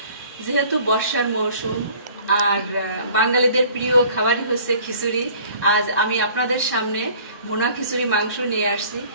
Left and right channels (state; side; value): inverted; both; correlation -0.51